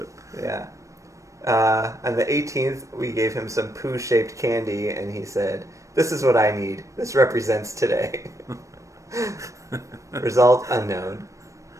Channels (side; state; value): left; late; 0.15 ms